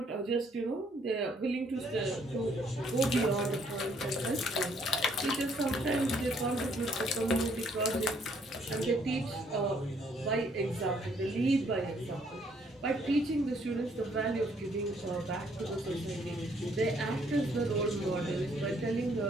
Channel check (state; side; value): normal; both; correlation 0.66